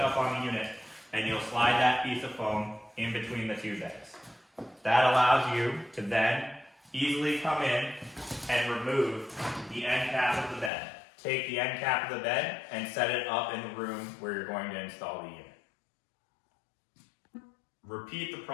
up on the unit, and you'll slide that piece of foam in between the two beds. That allows you to then easily come in and remove the end cap of the bed. Take the end cap of the bed and set it up in the room where you're going to install the unit. Repeat the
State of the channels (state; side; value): drops out; right; at 10.7 s